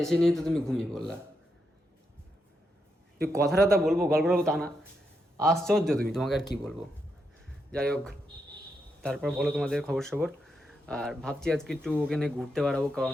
এসে নিয়ে তো তুমি ঘুমিয়ে পড়লা। তুই কথাটা বলবো, গল্প বলবো তা না, আশ্চর্য তুমি, তোমাকে আর কি বলবো। যাই হোক, তারপর বলো তোমাদের খবর সবর। আর ভাবছি আজকে একটু ওখানে ঘুরতে বেড়াবো, কারণ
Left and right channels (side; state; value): both; normal; correlation 0.83